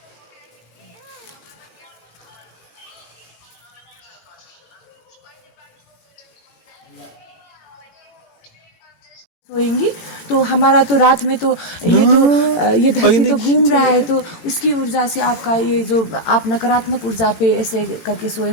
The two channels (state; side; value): late; right; 18 ms